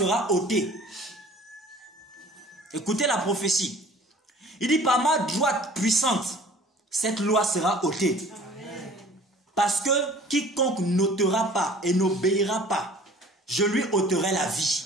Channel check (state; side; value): normal; both; correlation 0.49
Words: ôtée. Écoutez la prophétie. Il dit, par ma droite puissante, cette loi sera ôtée. Amen. Parce que quiconque n'ôtera pas et n'obéira pas, je lui ôterai la